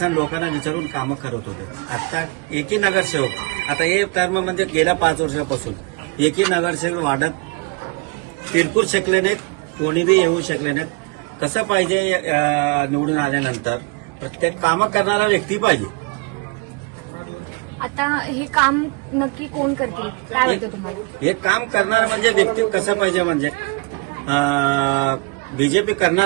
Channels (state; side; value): quieter; left; 28.8 dB